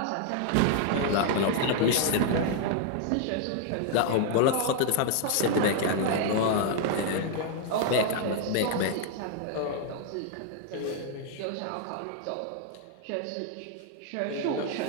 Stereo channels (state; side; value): different; both; correlation 0.00